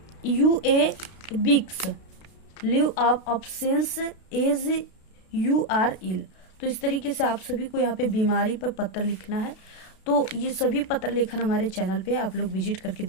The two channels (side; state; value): right; late; 32 ms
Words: यू ए बिक्स leave of options as you are ill. तो इस तरीके से आप सभी को यहाँ पे बीमारी पर पत्र लिखना है। तो ये सभी पत्र लेखन हमारे चैनल पे आप लोग विजिट करके